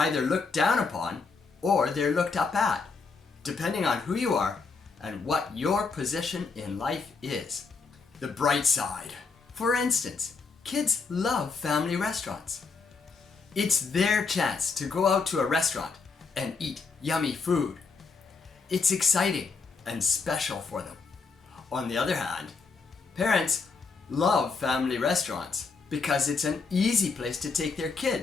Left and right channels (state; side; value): quieter; right; 4.7 dB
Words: looked down upon or they're looked up at, depending on who you are and what your position in life is. The bright side. For instance, kids love family restaurants. It's their chance to go out to a restaurant and eat yummy food. It's exciting and special for them. On the other hand, parents love family restaurants because it's an easy place to take their